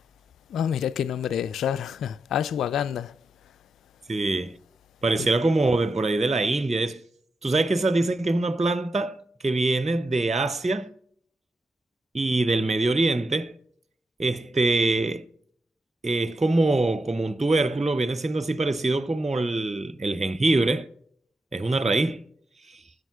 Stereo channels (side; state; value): both; normal; correlation 0.86